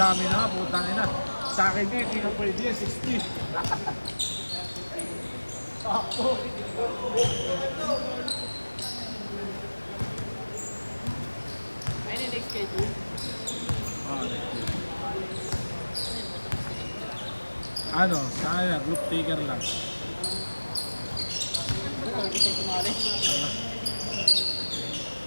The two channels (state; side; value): inverted; both; correlation -1.00